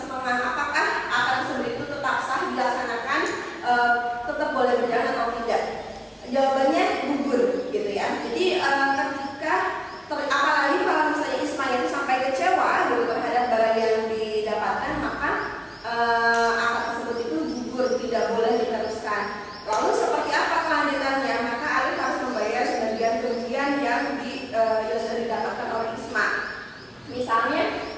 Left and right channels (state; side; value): identical; both; correlation 1.00